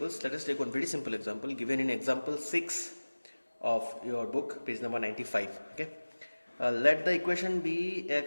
Let us take one very simple example given in example 6 of your book, page number 95. Okay. Let the equation be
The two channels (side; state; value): both; inverted; correlation -1.00